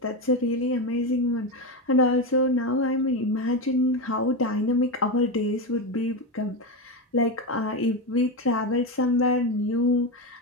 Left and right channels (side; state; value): both; normal; correlation 0.14